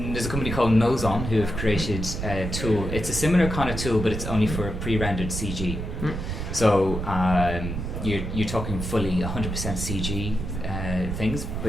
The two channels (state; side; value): noise; right; rumble, 4 dB below the sound